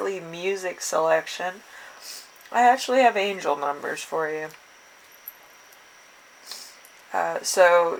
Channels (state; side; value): identical; both; correlation 1.00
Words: music selection, I actually have angel numbers for you. So